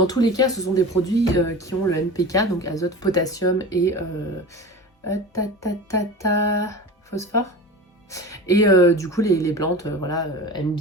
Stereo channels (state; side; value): normal; both; correlation 0.33